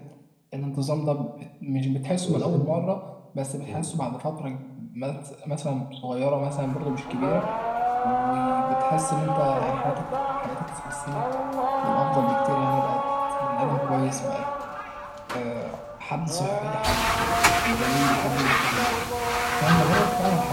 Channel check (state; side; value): identical; both; correlation 1.00